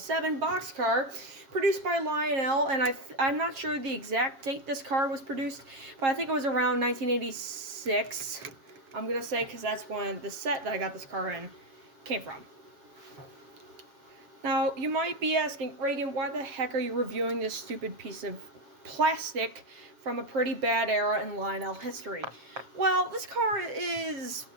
boxcar, produced by Lionel, and I'm not sure the exact date this car was produced, but I think it was around 1986, I'm going to say, because that's when the set that I got this car in came from. Now, you might be asking, Ragan, why the heck are you reviewing this stupid piece of plastic from a pretty bad era in Lionel history? Well, this car is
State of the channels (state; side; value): late; left; 7.4 ms